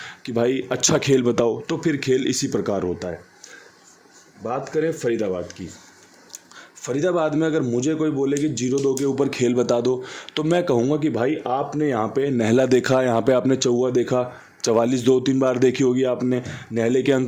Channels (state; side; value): identical; both; correlation 1.00